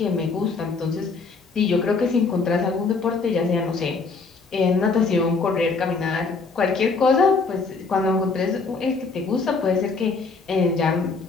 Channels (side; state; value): right; quieter; 4.4 dB